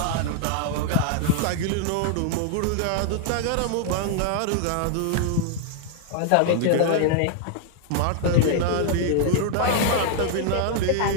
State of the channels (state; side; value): different; both; correlation 0.00